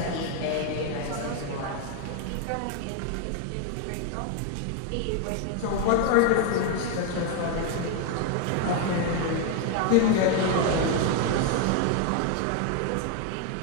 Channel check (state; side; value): different; both; correlation 0.01